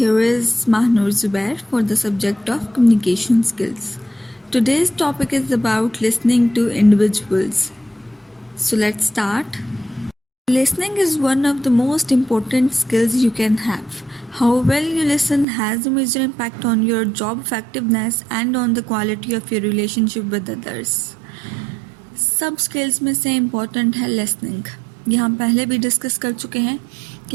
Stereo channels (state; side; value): drops out; left; at 15.5 s